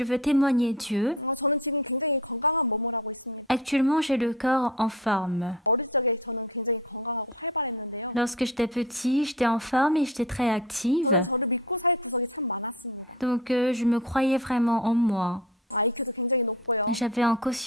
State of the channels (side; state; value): both; normal; correlation 0.33